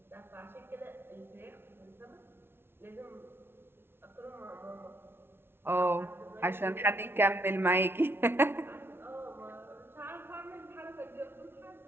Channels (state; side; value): late; left; 0.11 ms